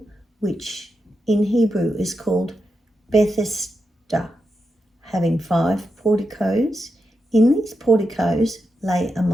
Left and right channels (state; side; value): normal; both; correlation 0.86